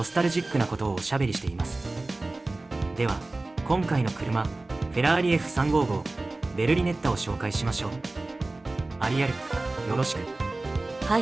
スタルジックなことをおしゃべりしています。では今回の車、フェラーリ F355 ベルリネッタを紹介しましょう。アリアル、よろしく。は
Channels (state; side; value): quieter; left; 3.0 dB